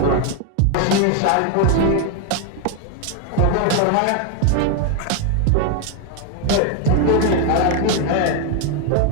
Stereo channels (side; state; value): both; different; correlation 0.01